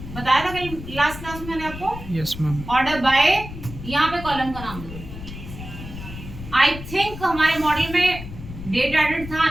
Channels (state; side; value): noise; left; rumble, 11 dB below the sound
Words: बताया था कल लास्ट क्लास में मैंने आपको। Yes ma'am. ऑर्डर बाय, यहाँ पे कॉलम का नाम दो। आई थिंक हमारे मॉडल में डेट एडेड था